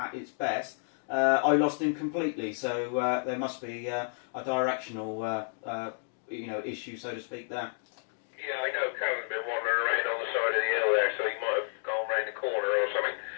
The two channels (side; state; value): right; silent; digital silence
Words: its best, I lost him completely. So there must be a directional issue, so to speak, there. Yeah, I know Callum's been wandering around on the side of the hill there, so he might have gone round the corner or something.